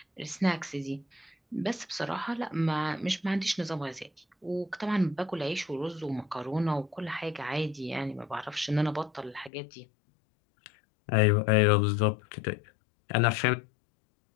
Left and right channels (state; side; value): drops out; right; at 9.5 s